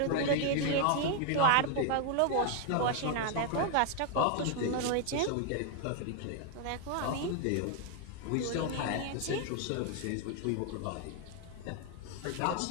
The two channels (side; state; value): both; different; correlation 0.00